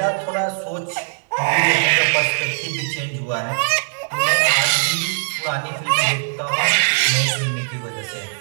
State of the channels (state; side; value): silent; left; 66 dB below the other